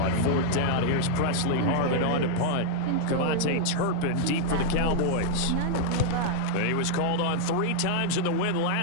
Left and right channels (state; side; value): different; both; correlation -0.01